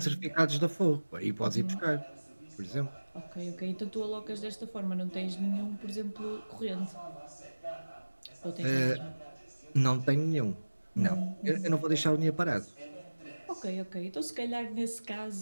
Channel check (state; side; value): inverted; both; correlation -1.00